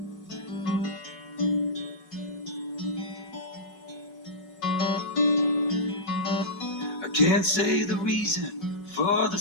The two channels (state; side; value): late; right; 5.3 ms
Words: Can't say the reason for the